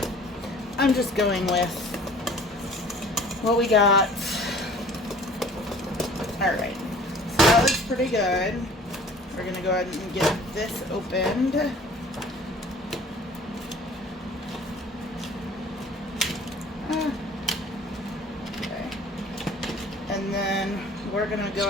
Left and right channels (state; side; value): normal; both; correlation 0.49